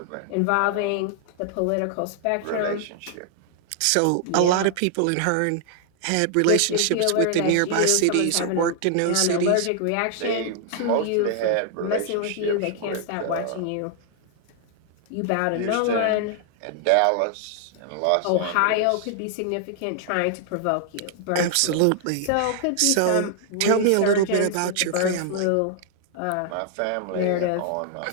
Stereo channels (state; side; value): different; both; correlation 0.00